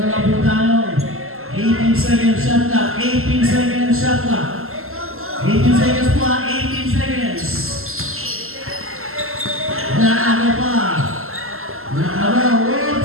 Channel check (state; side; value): late; left; 0.62 ms